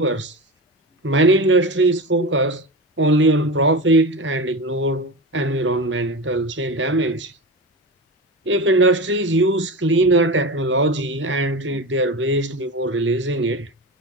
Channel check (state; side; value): normal; both; correlation 0.25